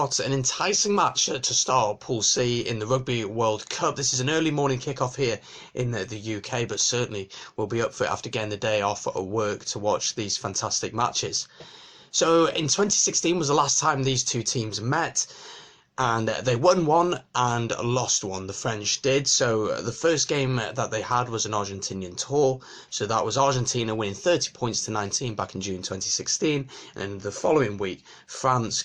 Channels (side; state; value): both; identical; correlation 1.00